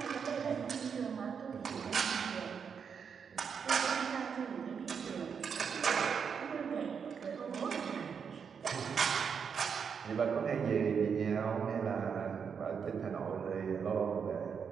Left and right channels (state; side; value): quieter; left; 6.6 dB